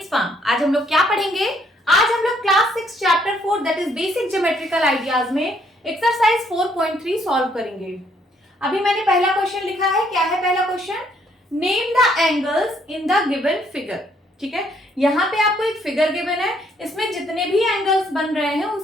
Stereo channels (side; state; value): both; normal; correlation 0.68